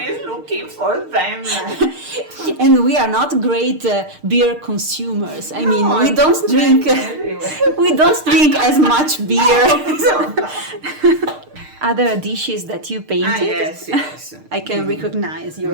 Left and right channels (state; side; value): late; left; 6.6 ms